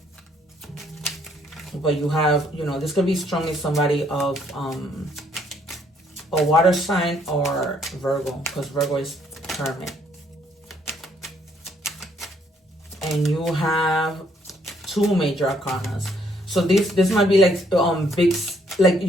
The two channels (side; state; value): both; normal; correlation 0.67